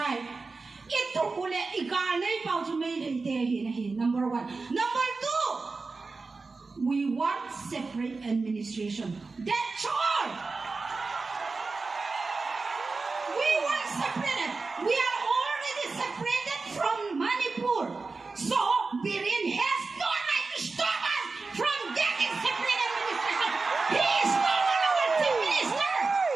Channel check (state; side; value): quieter; left; 4.0 dB